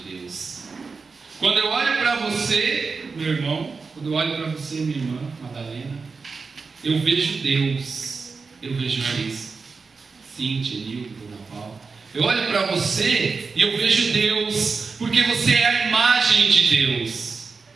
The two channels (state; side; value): quieter; left; 4.6 dB